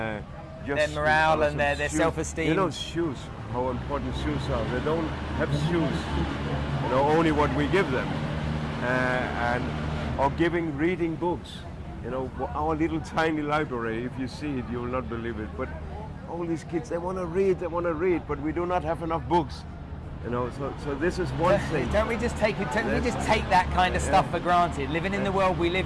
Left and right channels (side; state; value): both; identical; correlation 1.00